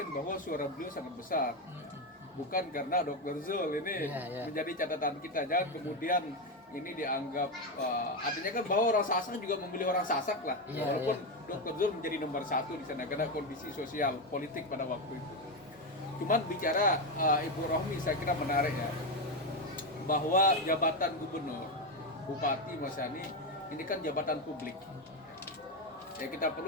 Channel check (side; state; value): both; normal; correlation 0.10